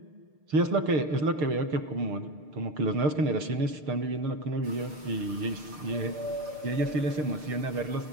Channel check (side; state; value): left; late; 6.6 ms